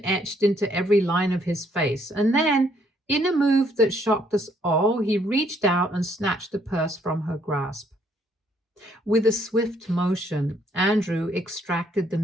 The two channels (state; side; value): normal; both; correlation 0.68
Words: etched into every line of his face. And then, in a move that shocked us all, he reached out and snatched the purse from her grasp. With a swift motion, Andrew extracted the